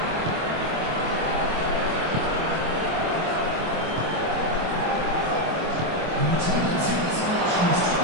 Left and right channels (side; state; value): left; late; 25 ms